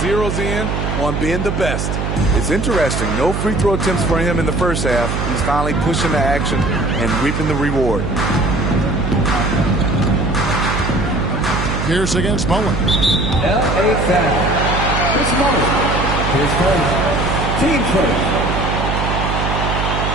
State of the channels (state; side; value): noise; right; hum, 1 dB below the sound